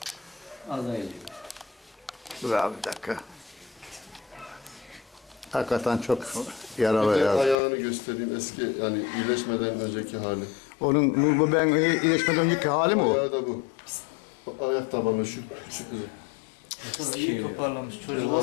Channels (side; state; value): right; drops out; at 7.6 s